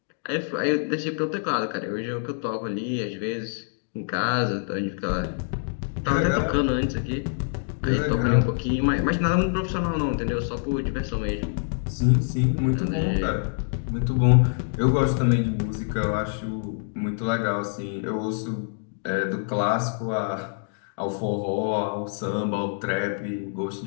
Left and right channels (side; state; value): right; silent; digital silence